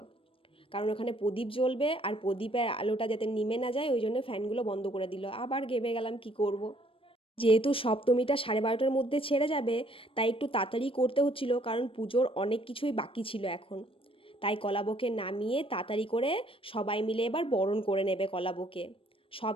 কারণ ওখানে প্রদীপ জ্বলবে আর প্রদীপের আলোটা যাতে নিমে না যায়, ওই জন্য ফ্যানগুলো বন্ধ করে দিল। আবার ঘেমে গেলাম, কি করব। যেহেতু সপ্তমীটা 12:30টার মধ্যে ছেড়ে যাবে, তাই একটু তাড়াতাড়ি করতে হচ্ছিল, কারণ পুজোর অনেক কিছুই বাকি ছিল এখন। তাই কলাবকে নামিয়ে তাড়াতাড়ি করে সবাই মিলে এবার বরণ করে নেবে কলাবকে। সব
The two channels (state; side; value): late; right; 0.26 ms